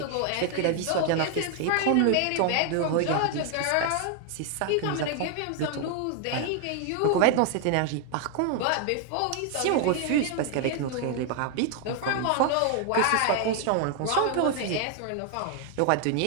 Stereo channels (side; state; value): both; different; correlation 0.00